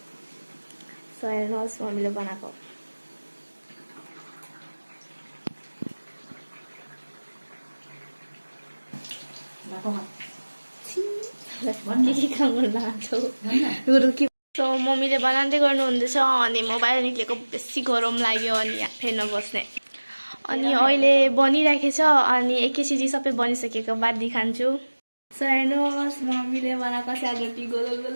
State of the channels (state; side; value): inverted; both; correlation -1.00